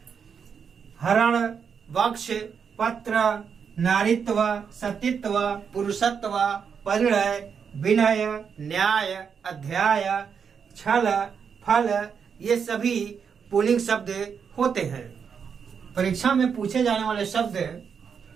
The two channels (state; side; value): quieter; left; 6.7 dB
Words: हरण, वक्ष, पत्र, नारित्व, सतीत्व, पुरुषत्व, परिणय, विनय, न्याय, अध्याय, छल, फल, ये सभी पुल्लिंग शब्द होते हैं। परीक्षा में पूछे जाने वाले शब्द